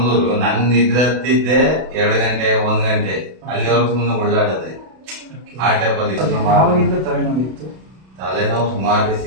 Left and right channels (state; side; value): late; left; 32 ms